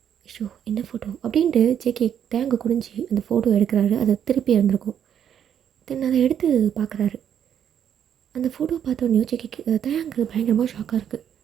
ஐயோ என்ன ஃபோட்டோ அப்படின்ட்டு ஜேகே தேங்க குனிஞ்சு அந்த ஃபோட்டோ எடுக்கிறாரு. அதை திருப்பி இருந்திருக்கும். தென் அதை எடுத்து பார்க்குறாரு. அந்த ஃபோட்டோ பார்த்தோன்னே ஜேகேக்கு தேங்கு பயங்கரமாக ஷாக்காக இருக்குது.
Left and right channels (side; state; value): left; quieter; 9.1 dB